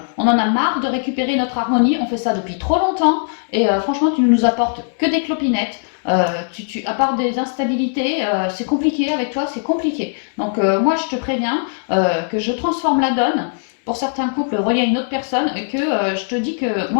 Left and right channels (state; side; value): silent; right; digital silence